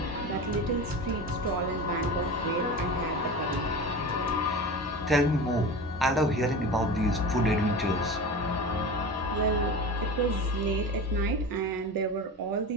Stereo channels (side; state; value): both; normal; correlation 0.30